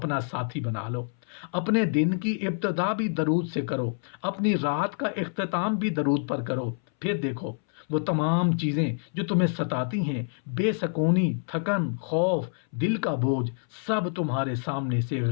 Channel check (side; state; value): right; silent; 60 dB below the other